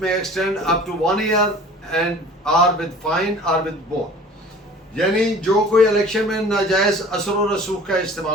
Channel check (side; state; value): both; normal; correlation 0.45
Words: may extend up to 1 year and or with fine or with both. यानी जो कोई इलेक्शन में नाजायज असर व रसूख का